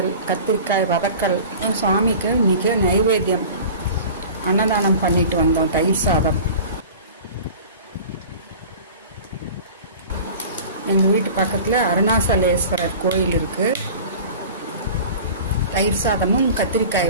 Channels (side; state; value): both; inverted; correlation -0.39